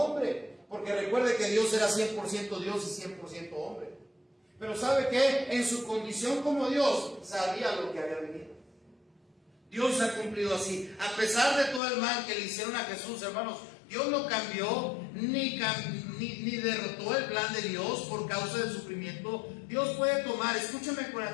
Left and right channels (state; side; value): drops out; right; at 11.8 s